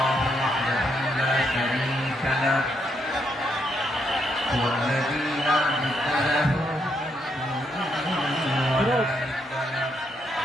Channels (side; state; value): both; normal; correlation 0.76